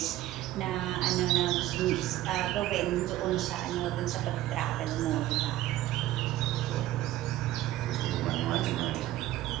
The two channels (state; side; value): quieter; left; 14.9 dB